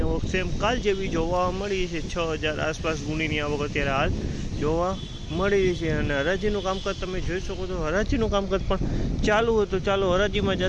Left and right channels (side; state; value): both; identical; correlation 1.00